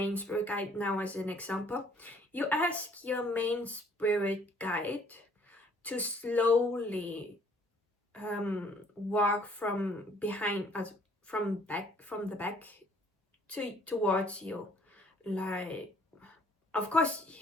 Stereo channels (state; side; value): normal; both; correlation 0.60